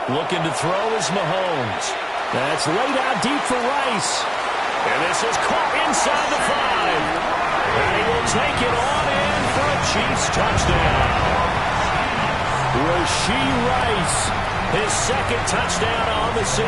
Looking to throw is Mahomes. That's laid out deep for Rice. And this is caught inside the 5. And he will take it on in for a Chiefs touchdown. Rashee Rice, his 2nd touchdown on the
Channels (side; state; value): both; identical; correlation 1.00